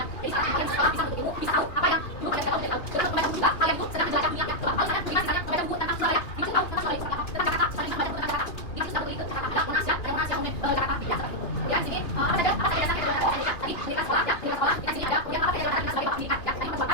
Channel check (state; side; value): late; right; 3.0 ms